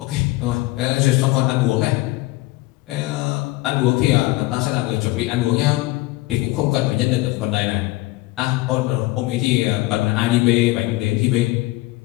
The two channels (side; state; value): right; quieter; 19.7 dB